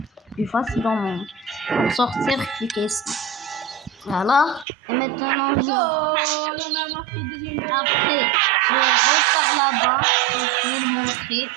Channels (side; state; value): left; drops out; at 4.7 s